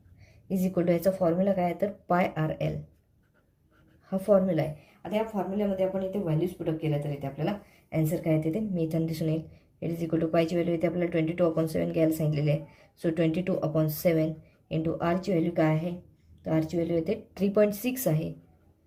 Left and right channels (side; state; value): both; identical; correlation 1.00